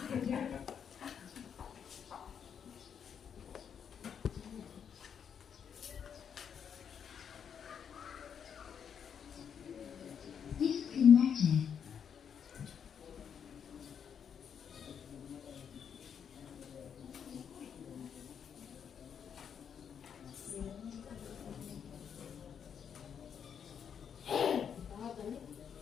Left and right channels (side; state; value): right; quieter; 7.7 dB